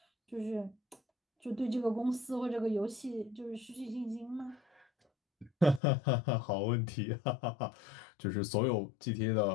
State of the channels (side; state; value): right; drops out; at 5.8 s